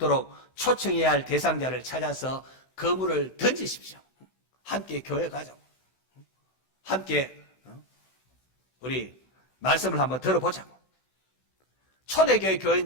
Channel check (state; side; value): late; right; 16 ms